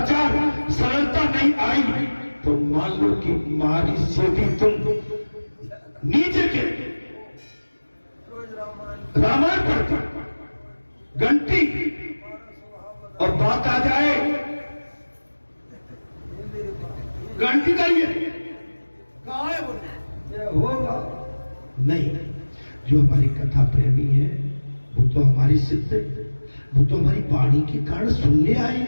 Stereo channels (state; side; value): inverted; both; correlation -1.00